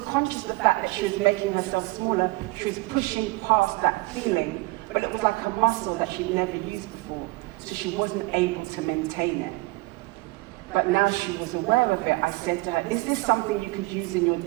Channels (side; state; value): left; quieter; 23.3 dB